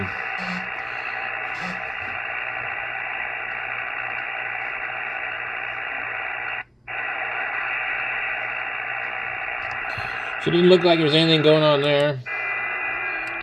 So it didn't look like there's anything going on there.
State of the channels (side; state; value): both; identical; correlation 1.00